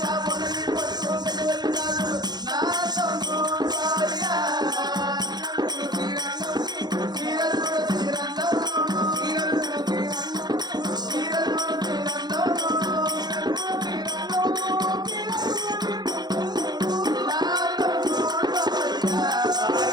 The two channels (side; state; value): left; late; 0.20 ms